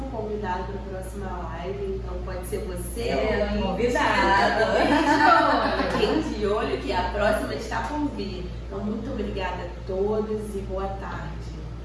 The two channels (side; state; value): both; identical; correlation 1.00